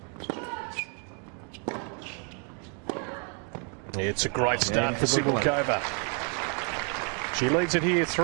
It's a great start Yeah, for Cibulkova. She leads it here,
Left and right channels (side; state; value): left; quieter; 39.6 dB